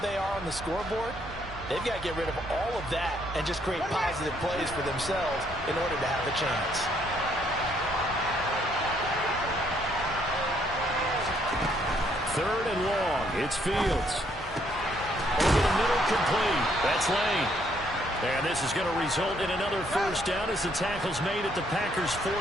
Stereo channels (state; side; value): normal; both; correlation 0.69